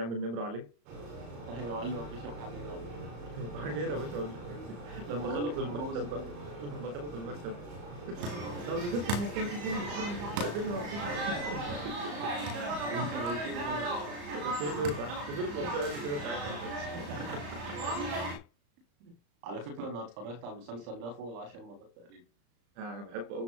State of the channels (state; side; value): late; left; 34 ms